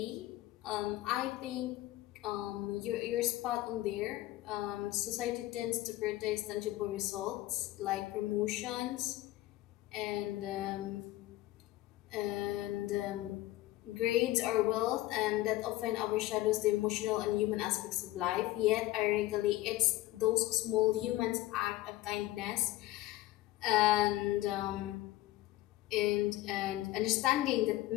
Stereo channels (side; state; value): right; quieter; 16.6 dB